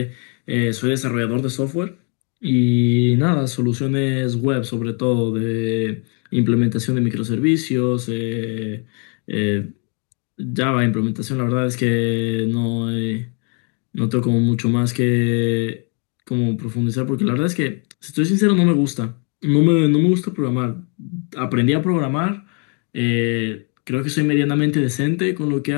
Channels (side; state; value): right; quieter; 37.5 dB